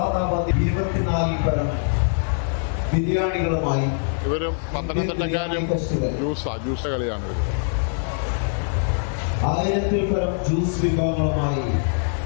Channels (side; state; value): right; silent; 62 dB below the other